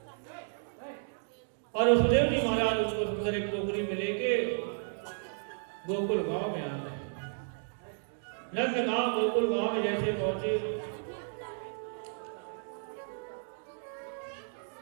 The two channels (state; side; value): silent; left; digital silence